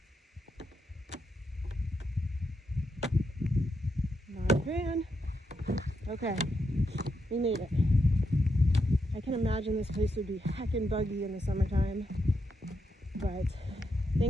Not a fan. Okay, we made it. I can imagine this place would be heckin' buggy in the summertime, but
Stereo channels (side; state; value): both; normal; correlation 0.82